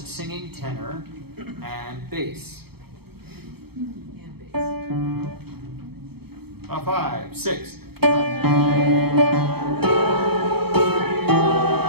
tenor and bass? 5, 6.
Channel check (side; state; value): left; late; 0.96 ms